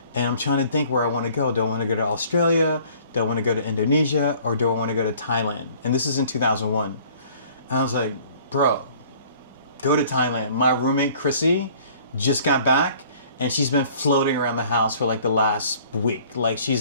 and I'm trying to think where I want to go. Do I want to go to Australia? Do I want to go to Indonesia? Or do I want to go to Thailand? And this is in 2001. And I was like, bro, go to Thailand. My roommate, Chrissy, just got back, and she's been floating around the house for like the last week. Like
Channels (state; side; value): inverted; both; correlation -0.54